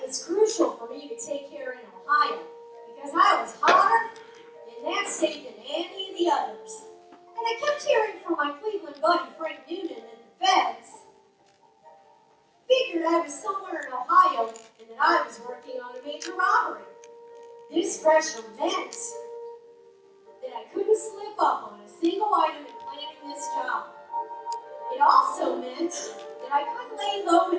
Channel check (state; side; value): identical; both; correlation 1.00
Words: was crucial for me to take care in Ohio because I was hotter in that state than any of the others. And I kept hearing from my Cleveland buddy Frank Noonan that the feds figured I was somewhere in Ohio and that I was working on a major robbery. This pressure meant that I couldn't slip up on a single item in planning this job. It also meant that I couldn't lay low in